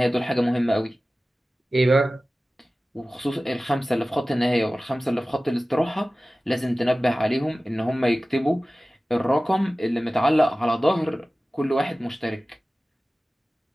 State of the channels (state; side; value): normal; both; correlation 0.97